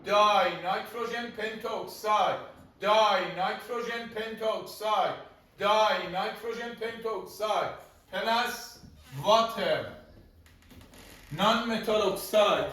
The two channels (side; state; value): both; identical; correlation 1.00